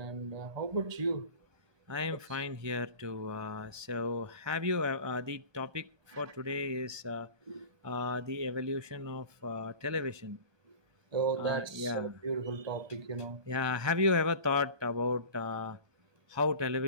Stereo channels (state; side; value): late; left; 1.2 ms